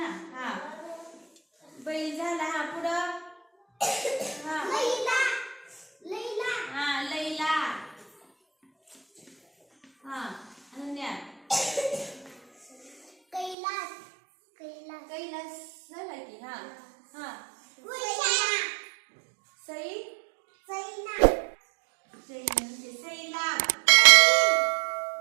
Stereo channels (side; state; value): left; drops out; at 13.6 s